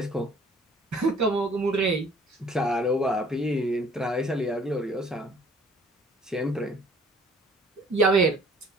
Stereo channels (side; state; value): both; normal; correlation 0.56